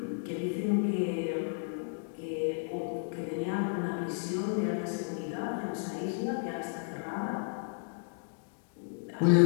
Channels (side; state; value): right; silent; digital silence